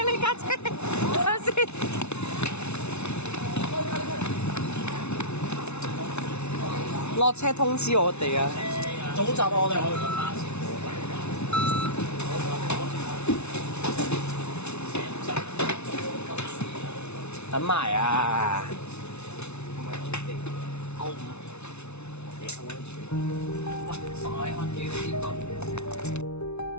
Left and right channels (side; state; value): right; late; 0.81 ms